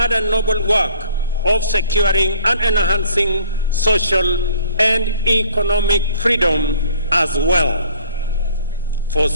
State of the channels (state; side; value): inverted; both; correlation -0.55